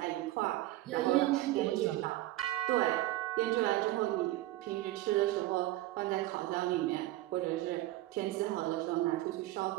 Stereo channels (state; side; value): quieter; left; 16.6 dB